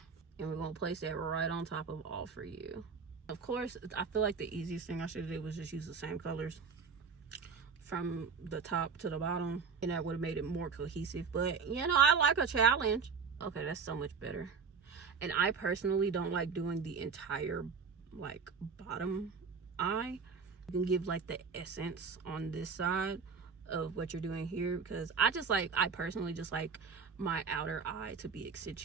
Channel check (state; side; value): quieter; left; 5.5 dB